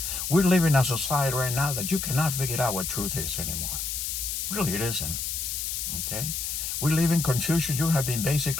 We're living in a society right now that you cannot figure out what truth is anymore. Really, it isn't. Okay? We live in confusion. You have been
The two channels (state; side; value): noise; left; hiss, 3 dB below the sound